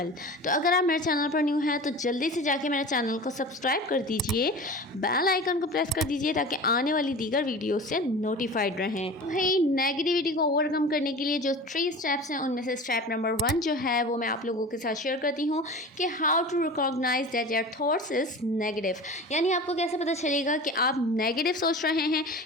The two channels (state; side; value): normal; both; correlation 0.35